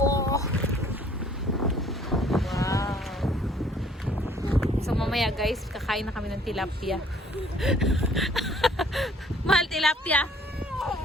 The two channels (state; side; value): normal; both; correlation 0.58